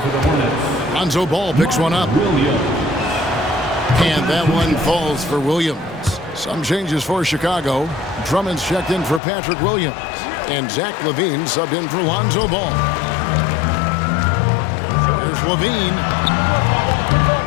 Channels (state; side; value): drops out; right; at 9.2 s